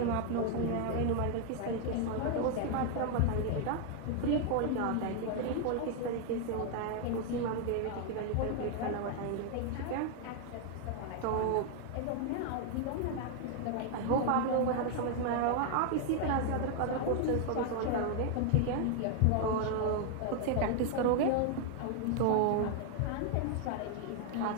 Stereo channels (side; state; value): both; different; correlation 0.00